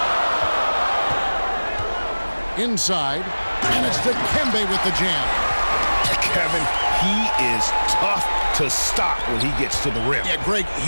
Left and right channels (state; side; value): inverted; both; correlation -1.00